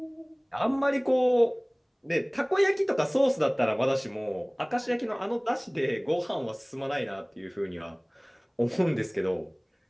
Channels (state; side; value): identical; both; correlation 1.00